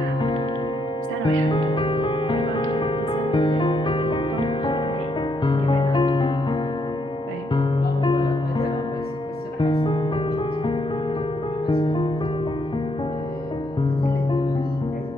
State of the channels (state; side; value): normal; both; correlation 0.76